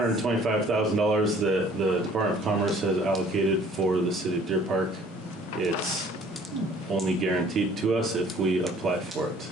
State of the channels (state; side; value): normal; both; correlation 0.55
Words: that the Department of Commerce has allocated for the city of Deer Park. It's only guaranteed to us if we apply for it.